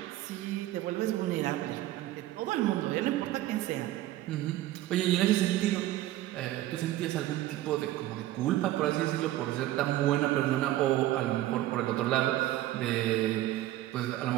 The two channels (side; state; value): left; quieter; 15.1 dB